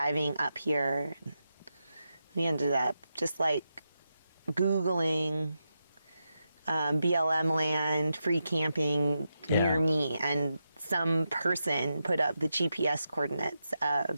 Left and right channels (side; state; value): both; inverted; correlation -0.86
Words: up here. We ended up just like Googling BLM land, free camping near me, and some person put up the GPS coordinates